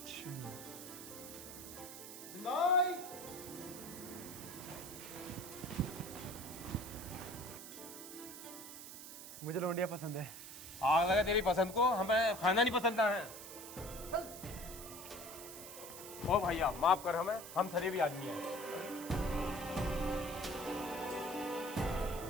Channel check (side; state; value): right; noise; hiss, 12 dB below the sound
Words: अच्छा। मुझे लौंडिया पसंद है। आग लगा तेरी पसंद को, हमें खाना नहीं पसंद है। ओ भैया माफ कर हमें, हम शरीफ आदमी हैं।